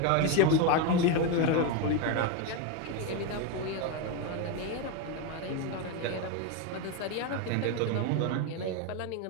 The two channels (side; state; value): both; different; correlation 0.03